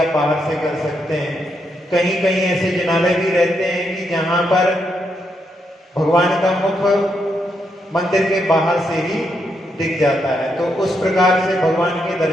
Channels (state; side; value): normal; both; correlation 0.80